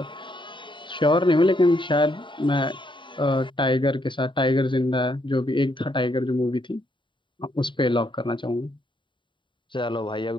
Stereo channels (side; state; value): right; late; 0.23 ms